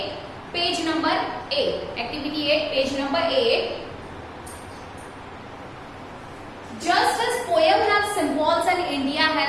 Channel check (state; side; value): identical; both; correlation 1.00